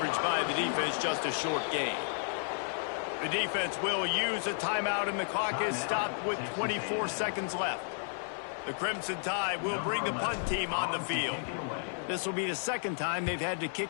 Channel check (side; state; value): right; silent; 56 dB below the other